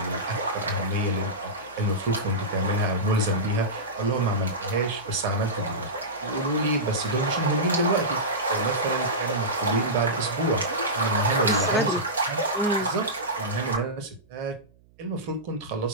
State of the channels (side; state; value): right; noise; hum, 30 dB below the sound